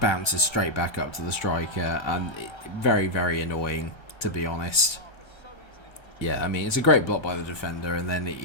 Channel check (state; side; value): late; right; 1.2 ms